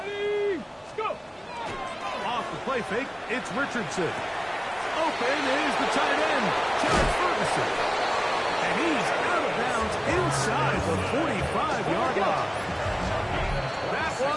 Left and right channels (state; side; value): identical; both; correlation 1.00